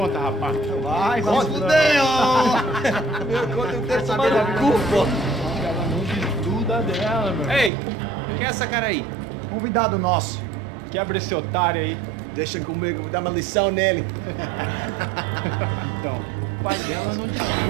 rapaz. Vai, conta. Fudeu! Meu conta eu quero tomar no cu, pô. Ela não desgruda dela, meu. Ei, quem é essa cara aí? Convidado nosso. Quebra esse otário aí. Deixa comigo, vou dar uma lição nele. Então, o pai dela não desgruda.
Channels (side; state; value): left; drops out; at 7.7 s